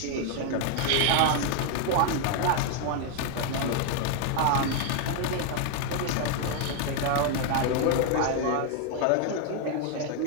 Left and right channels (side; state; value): both; different; correlation 0.00